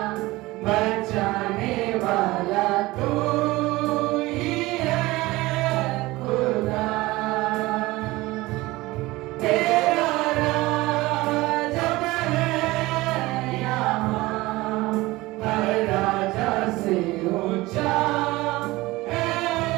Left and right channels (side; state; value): left; quieter; 20.0 dB